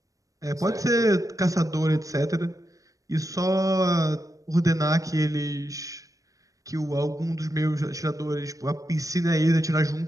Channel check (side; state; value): left; late; 0.16 ms